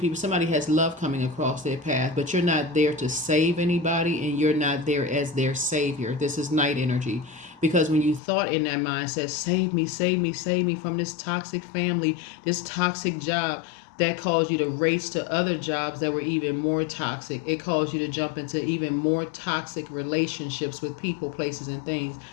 somebody has love coming across their path, but you're not there to save anybody and you're not there as their savior. This is Knight energy. Because when you thought in that mindset, save me, save me, save me from this toxic family, this toxic job, that caused you to race to other jobs that were even more toxic. It caused you to jump into even more toxic relationships with people, places, and things.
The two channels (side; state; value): right; drops out; at 8.2 s